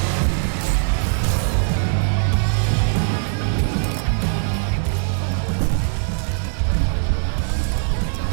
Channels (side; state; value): left; silent; 65 dB below the other